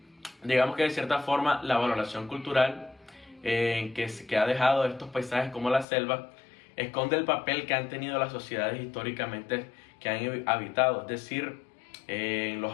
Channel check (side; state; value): right; drops out; at 5.9 s